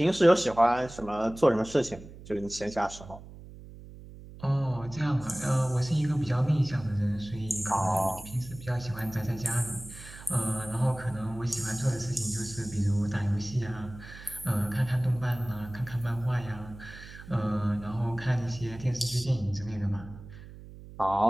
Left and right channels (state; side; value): noise; right; hum, 16 dB below the sound